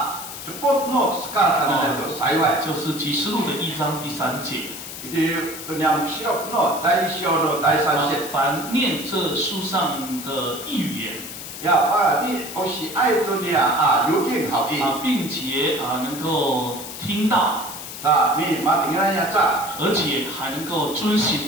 就是启示录的1章第3节。凡念这书上的预言。并且能够听到，而且还能够遵行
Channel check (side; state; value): left; noise; hiss, 10 dB below the sound